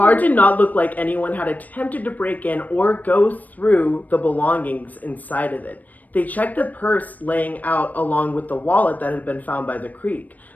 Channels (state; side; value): late; right; 0.079 ms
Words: did not look like anyone had attempted to break in or go through the belongings inside of it. They checked the purse laying out along with the wallet that had been found by the creek.